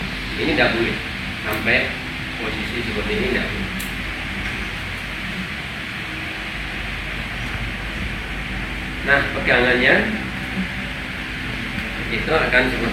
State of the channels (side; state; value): both; identical; correlation 1.00